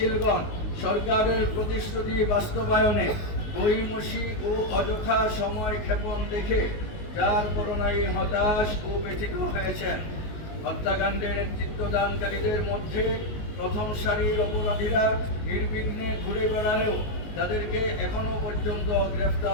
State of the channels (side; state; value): right; late; 19 ms